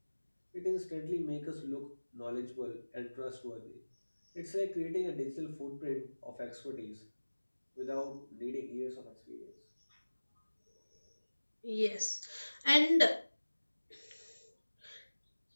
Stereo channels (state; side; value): inverted; both; correlation -1.00